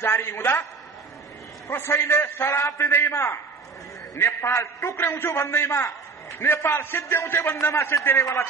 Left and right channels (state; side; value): quieter; left; 4.7 dB